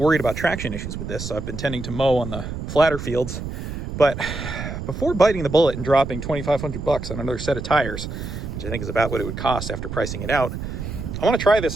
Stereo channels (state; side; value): noise; right; rumble, 7 dB below the sound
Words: about traction issues with this, so I've been tending to mow on the flatter fields, but before biting the bullet and dropping $2,500 on another set of tires, which I think is about what it would cost after pricing it out, I want to try